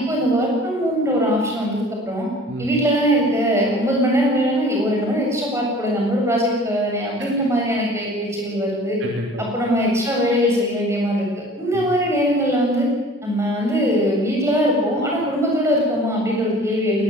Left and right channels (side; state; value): both; normal; correlation 0.47